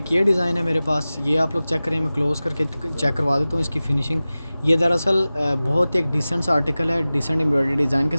ये डिज़ाइन है मेरे पास, ये आप लोग चेक करें, मैं क्लोज़ करके चेक करवा देता हूँ इसकी फ़िनिशिंग। ये दरअसल बहुत एक डिसेंट सा आर्टिकल है, डिसेंट एम्ब्रॉयडरी डिज़ाइन के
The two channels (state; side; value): inverted; both; correlation -0.97